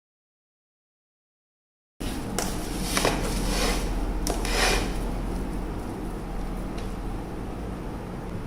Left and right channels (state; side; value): identical; both; correlation 1.00